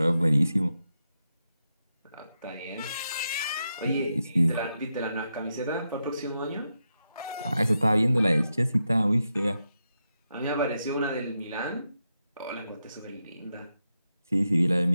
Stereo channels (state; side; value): inverted; both; correlation -0.86